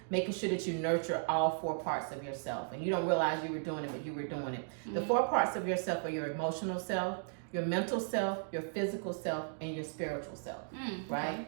making sure that you nurture all four parts of yourself. And you don't realize you were doing it, but you were doing it. Mm-hmm. The four parts of yourself are your emotional self, your mental self, your physical self, and your spiritual self, right? Okay.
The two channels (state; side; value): silent; left; digital silence